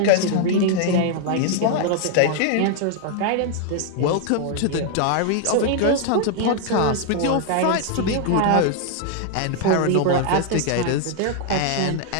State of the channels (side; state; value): both; different; correlation 0.00